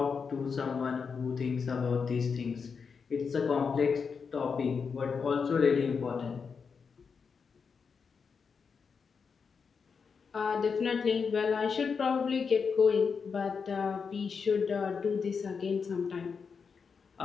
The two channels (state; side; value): quieter; right; 5.7 dB